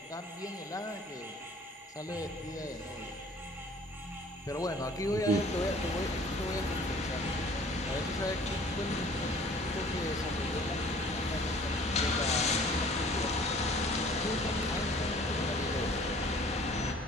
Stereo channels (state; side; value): normal; both; correlation 0.51